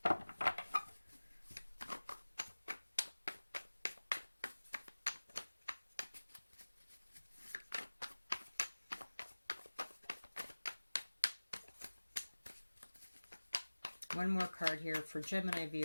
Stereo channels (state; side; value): inverted; both; correlation -1.00